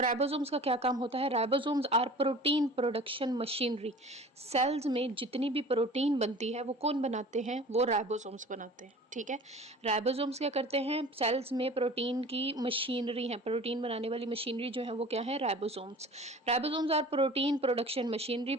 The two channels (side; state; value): both; normal; correlation 0.42